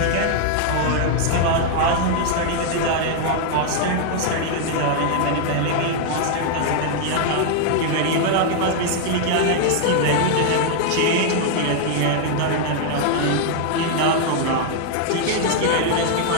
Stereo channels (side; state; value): both; different; correlation 0.00